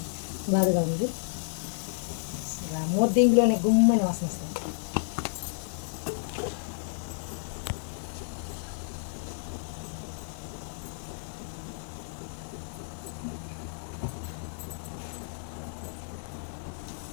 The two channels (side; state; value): right; silent; digital silence